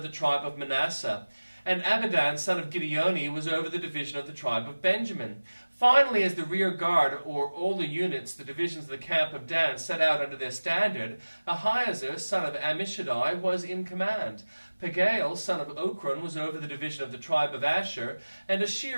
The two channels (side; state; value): both; inverted; correlation -1.00